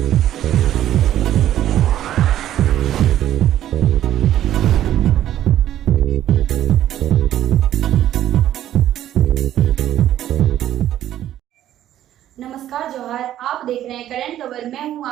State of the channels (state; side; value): quieter; left; 12.1 dB